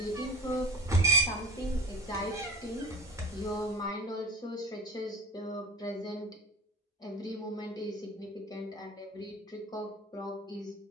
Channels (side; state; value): both; normal; correlation 0.36